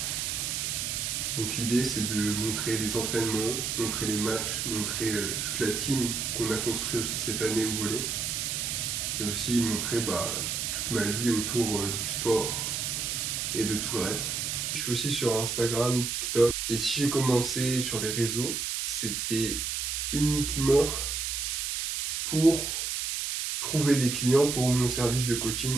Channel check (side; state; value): right; noise; hiss, 1 dB below the sound